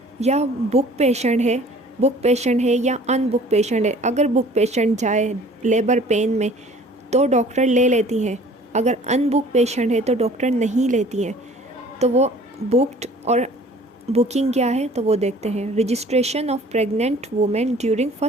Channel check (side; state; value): both; normal; correlation 0.50